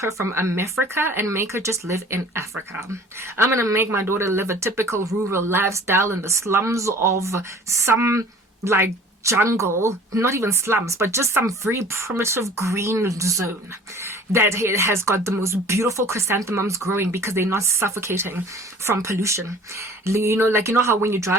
from America and make her just live in Africa. I'm going to make my daughter live a typical rural lifestyle in the slums of some like jungle, not even slums, but just some very primitive green zone that has got the most beautiful chrysanthemums growing because they're not suffocating from pollution. You know how when you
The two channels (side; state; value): both; normal; correlation 0.47